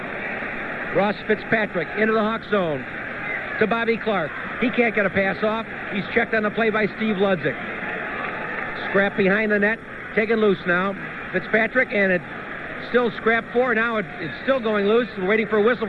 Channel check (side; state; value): both; identical; correlation 1.00